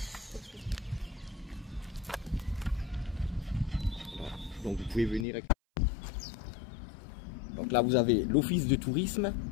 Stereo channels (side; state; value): right; drops out; at 5.2 s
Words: Donc vous pouvez venir avec... Donc là vous avez l'office de tourisme